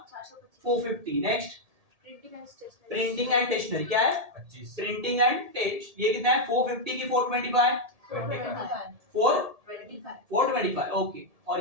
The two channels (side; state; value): left; late; 1.7 ms